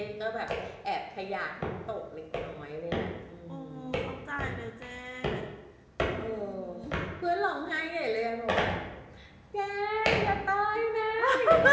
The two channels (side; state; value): both; identical; correlation 1.00